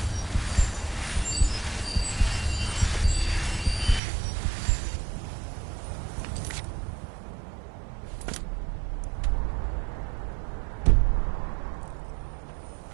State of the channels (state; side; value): drops out; left; at 4.0 s